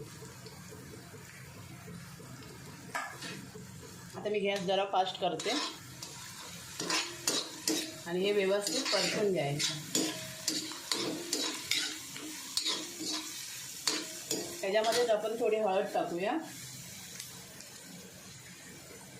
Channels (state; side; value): identical; both; correlation 1.00